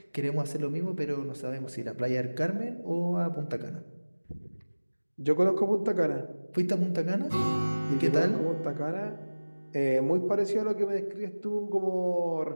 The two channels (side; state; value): both; inverted; correlation -1.00